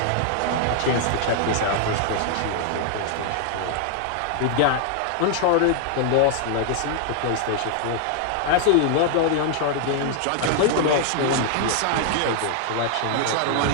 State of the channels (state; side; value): different; both; correlation 0.00